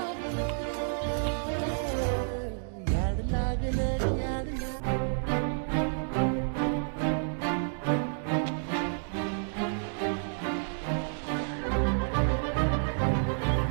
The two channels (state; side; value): silent; left; digital silence